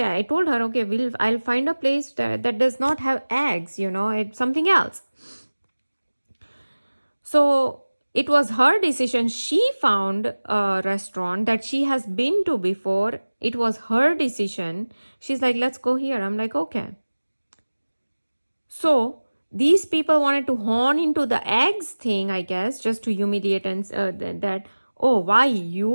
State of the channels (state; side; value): inverted; both; correlation -1.00